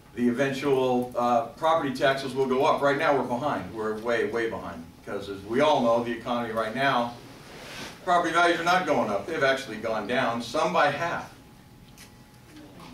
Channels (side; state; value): both; identical; correlation 1.00